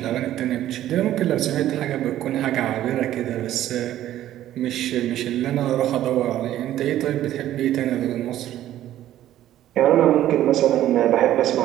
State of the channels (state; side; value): quieter; left; 12.8 dB